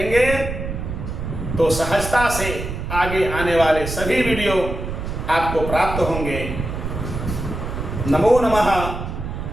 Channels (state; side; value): noise; right; rumble, 5 dB below the sound